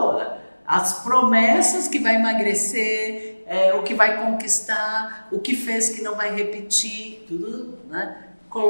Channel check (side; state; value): both; inverted; correlation -1.00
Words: As promessas que vai emagrecer, o que vai conquistar, o que fez que não vai repetir, tudo, né?